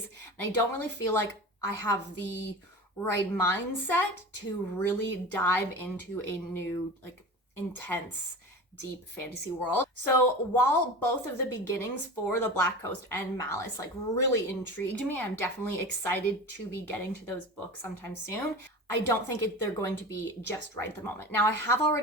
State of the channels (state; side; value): normal; both; correlation 0.32